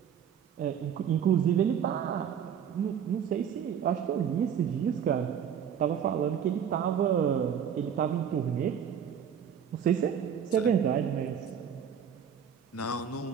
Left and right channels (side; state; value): left; quieter; 8.2 dB